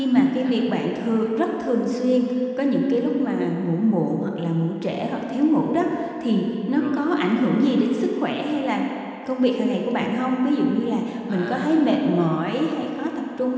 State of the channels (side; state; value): both; identical; correlation 1.00